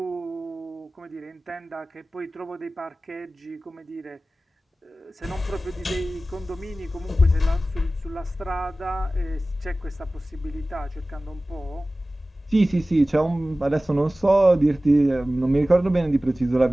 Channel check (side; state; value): both; normal; correlation 0.97